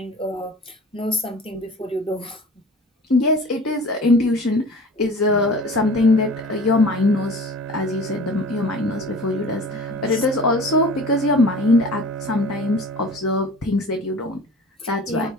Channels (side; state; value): both; normal; correlation 0.41